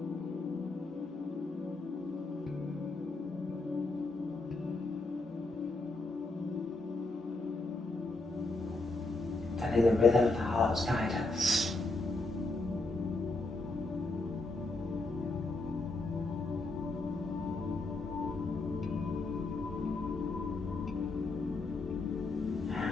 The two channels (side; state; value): right; quieter; 3.2 dB